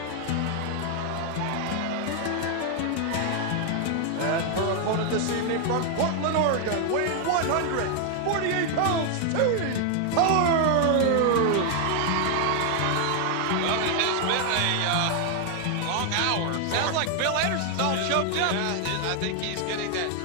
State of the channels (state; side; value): different; both; correlation 0.00